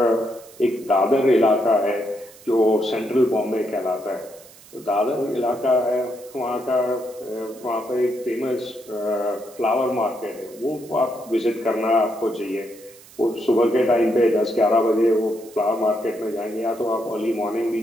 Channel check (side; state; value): right; noise; hiss, 22 dB below the sound